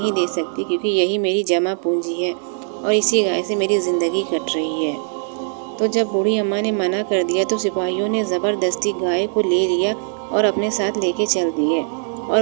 دے سکتی کیونکہ یہی میری جمع پونجی ہے اور اسی گائے سے میری زندگی کٹ رہی ہے۔ تو جب بوڑھی اماں نے منع کر دیا تو سپاہیوں نے زبردستی گائے کو لے لیا اور اپنے ساتھ لے کے چل دیے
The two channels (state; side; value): silent; left; 66 dB below the other